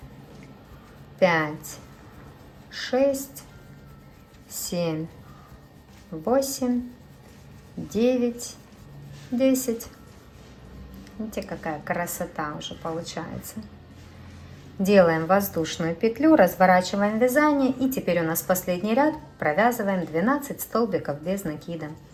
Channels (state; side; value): identical; both; correlation 1.00